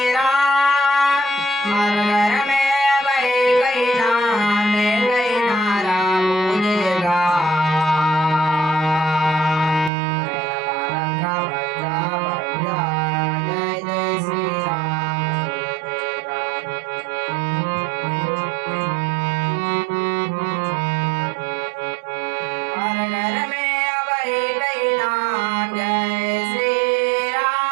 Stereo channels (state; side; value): drops out; left; at 9.9 s